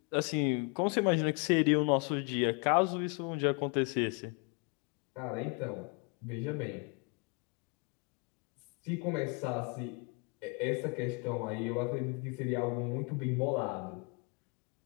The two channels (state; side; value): quieter; right; 32.2 dB